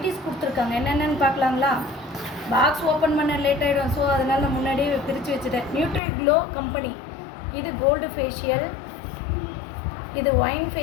கொடுத்துருக்காங்க. என்னென்னு பார்க்கலாங்களா? பாக்ஸ் ஓப்பன் பண்ண லேட் ஆகிடும். ஸோ அதனால் நான் முன்னாடியே பிரித்து வச்சுட்டேன். Nutri Glow company. இது கோல்டு ஃபேஷியல், இது ஒயின்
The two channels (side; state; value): right; drops out; at 6.0 s